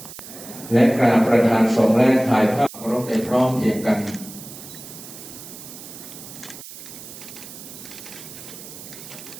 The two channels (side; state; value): right; noise; hiss, 14 dB below the sound